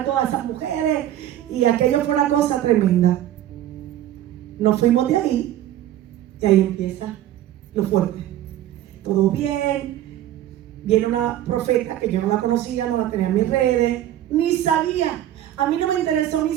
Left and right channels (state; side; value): quieter; left; 12.5 dB